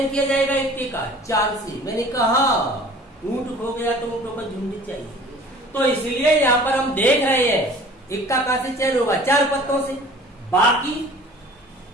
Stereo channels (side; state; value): both; normal; correlation 0.47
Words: किया जाएगा इक्के का? 4 से। मैंने कहा ऊंट खो गया तो ऊंटों पर झुंडी चाहिए, तो इसलिए यहाँ पर हम देख रहे हैं इक्का कहां से चयन होगा? 4 पत्तों से। बाकी